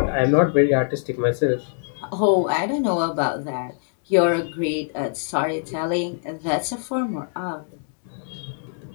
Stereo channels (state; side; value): silent; right; digital silence